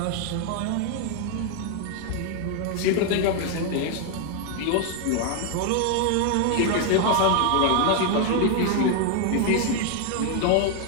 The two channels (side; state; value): both; different; correlation 0.00